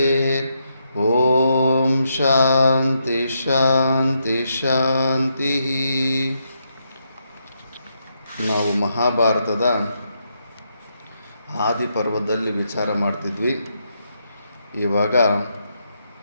ಓಂ ಶಾಂತಿ ಶಾಂತಿ ಶಾಂತಿ. ನಾವು ಮಹಾಭಾರತದ ಆದಿ ಪರ್ವದಲ್ಲಿ ವಿಚಾರ ಮಾಡ್ತಿದ್ವಿ. ಇವಾಗ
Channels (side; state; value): both; inverted; correlation -0.80